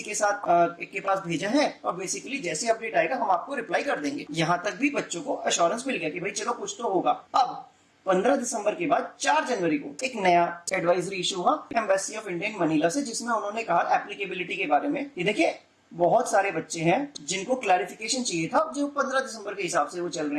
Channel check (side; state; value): both; identical; correlation 1.00